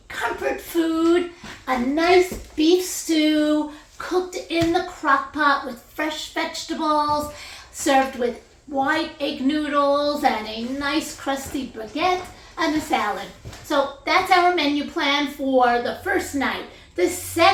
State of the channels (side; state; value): both; identical; correlation 1.00